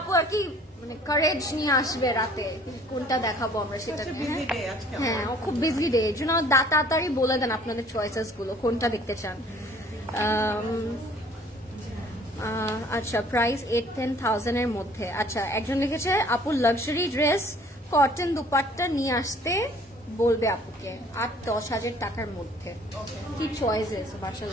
আর কি মানে কারেজ নিয়ে আসবে রাতে কোনটা দেখাবো আমরা সেটা। হ্যাঁ খুব বিজি ডে, এর জন্য তাড়াতাড়ি বলে দেন আপনাদের চয়েসেস গুলো কোনটা দেখতে চান। আচ্ছা প্রাইস 8-10,000 এর মধ্যে। আচ্ছা একজন লিখেছে আপু লাক্সারি ড্রেস কটন দুপাট্টা নিয়ে আসতে বলবে আপুকে 8-10,000 টাকার মধ্যে। কি চয়েসেস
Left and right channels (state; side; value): normal; both; correlation 0.55